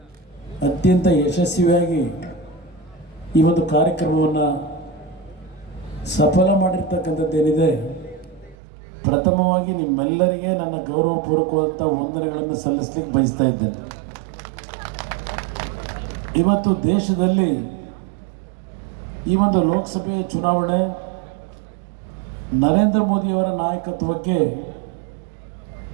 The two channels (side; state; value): left; drops out; at 8.6 s